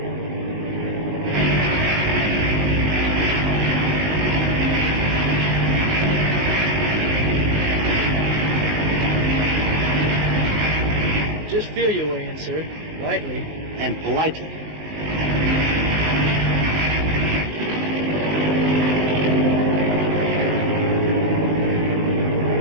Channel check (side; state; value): left; late; 19 ms